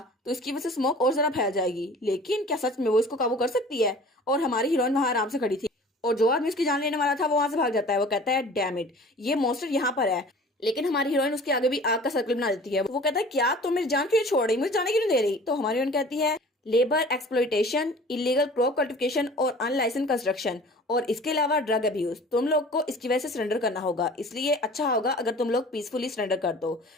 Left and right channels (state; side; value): normal; both; correlation 0.45